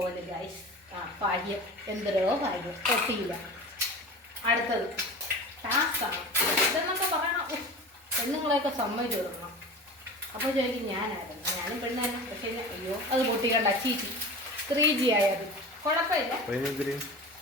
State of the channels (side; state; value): both; normal; correlation 0.34